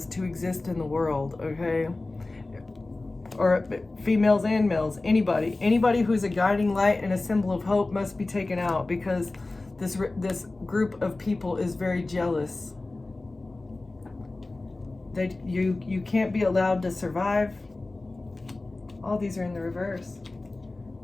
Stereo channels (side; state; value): right; quieter; 3.1 dB